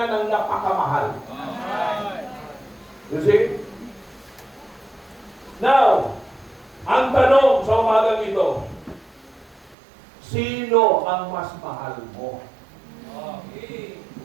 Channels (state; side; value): drops out; left; at 9.8 s